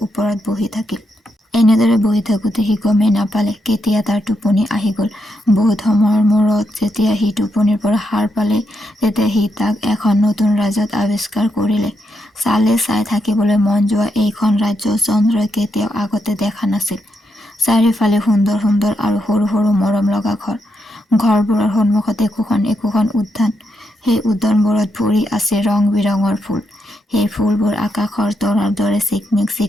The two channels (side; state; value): both; normal; correlation 0.81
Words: ওপৰত বহি থাকিল। এনেদৰে বহি থাকোতে সি গমেই নাপালে কেতিয়া তাৰ টোপনি আহি গল। বহুত সময়ৰ মূৰত যেতিয়া সি টোপনিৰ পৰা সাৰ পালে তেতিয়া সি তাক এখন নতুন ৰাজ্যত আৱিষ্কাৰ কৰিলে। চাই থাকিবলৈ মন যোৱা এইখন ৰাজ্য চন্দ্ৰই কেতিয়াও আগতে দেখা নাছিল। চাৰিওফালে সুন্দৰ সুন্দৰ আৰু সৰু সৰু মৰম লগা ঘৰ। ঘৰবোৰৰ সন্মুখত একোখন উদ্যান। সেই উদ্যানবোৰত ভৰি আছে ৰং বিৰঙৰ ফুল। সেই ফুলবোৰ আকাশৰ তৰাৰ দৰে